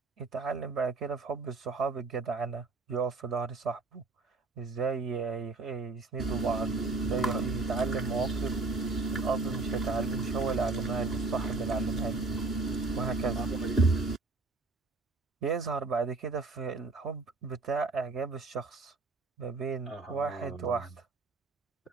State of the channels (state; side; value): quieter; left; 3.7 dB